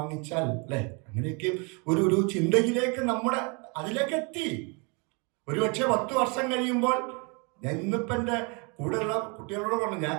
അല്ലെ? അങ്ങനെയൊക്കെ ഒരു ചിന്തയിലേക്ക് അതിലേക്ക് എത്തി. ഒരുപക്ഷെ 10 വർഷം കഴിയുമ്പോൾ, ഞാൻ ഇന്നിപ്പോ എന്റെ കൂടെയുള്ള കുട്ടികളോട് പറഞ്ഞു, ഞാൻ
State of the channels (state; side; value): quieter; left; 32.5 dB